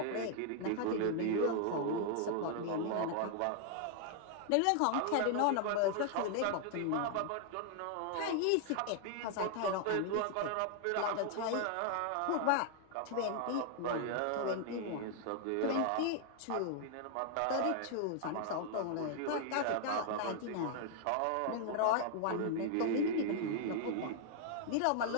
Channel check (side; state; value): both; different; correlation 0.00